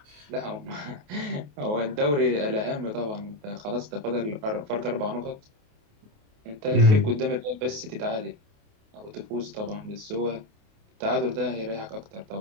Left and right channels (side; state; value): left; late; 28 ms